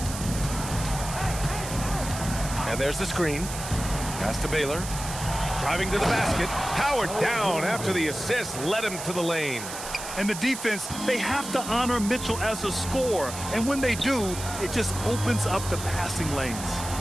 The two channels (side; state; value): right; noise; hiss, 9 dB below the sound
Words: And there's the screen. Pass to Baylor. Driving to the basket. Howard down after the assist led him to the lane. And the defense, they have to honor Mitchell as a scorer. And when they do, it just opens up the passing lanes.